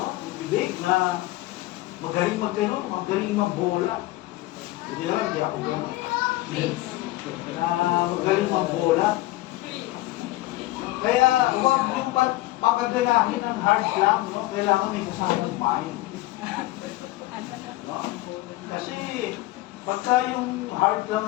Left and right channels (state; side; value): quieter; right; 18.0 dB